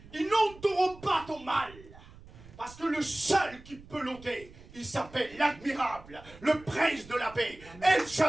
Ils n'ôteront pas ton mal. Parce que le seul qui peut l'ôter, il s'appelle l'admirable, le prince de la paix, El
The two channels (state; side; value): noise; right; rumble, 20 dB below the sound